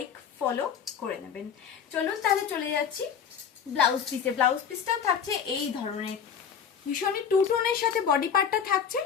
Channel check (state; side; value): quieter; right; 7.5 dB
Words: ফলো করে নেবেন। চলুন তাহলে চলে যাচ্ছি ব্লাউজ পিসে। ব্লাউজ পিসটাও থাকছে এই ধরনের ভীষণই টু টোনের সাথে বডি পার্টটা থাকছে,